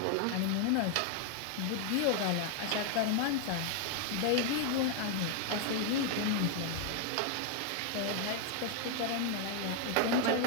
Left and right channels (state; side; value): different; both; correlation 0.00